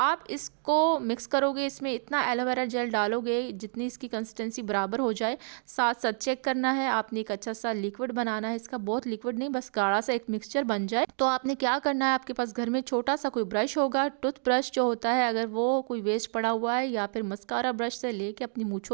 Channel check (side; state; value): left; silent; digital silence